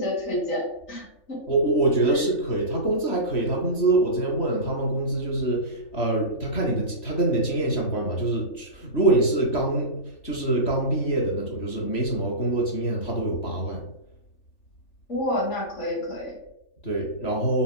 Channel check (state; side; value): late; right; 3.4 ms